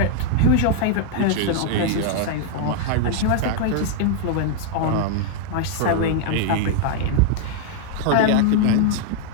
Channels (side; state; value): both; different; correlation 0.00